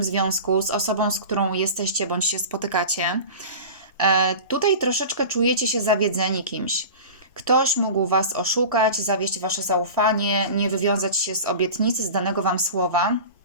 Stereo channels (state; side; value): inverted; both; correlation -0.33